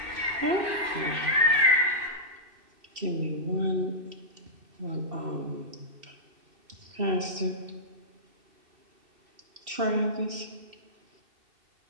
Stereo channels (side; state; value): left; late; 2.7 ms